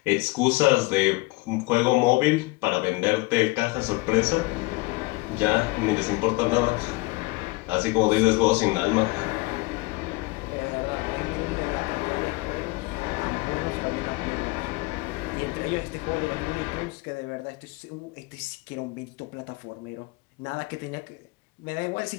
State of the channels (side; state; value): right; quieter; 24.3 dB